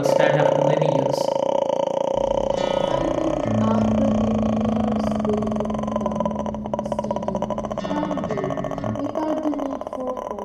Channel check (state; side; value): identical; both; correlation 1.00